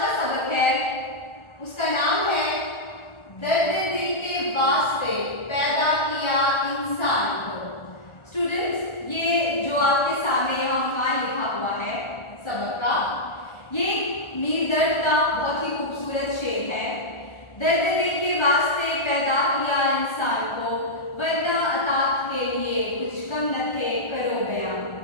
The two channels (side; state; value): right; late; 1.4 ms